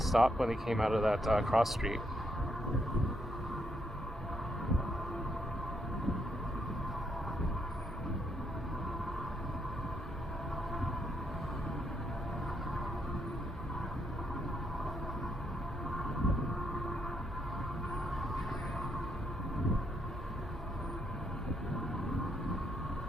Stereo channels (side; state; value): both; normal; correlation 0.76